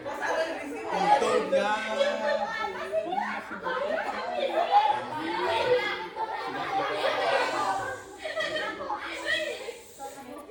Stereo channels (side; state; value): both; identical; correlation 1.00